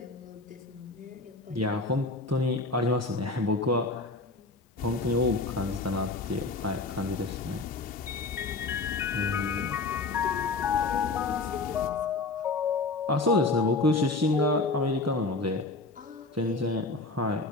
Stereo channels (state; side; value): quieter; right; 3.5 dB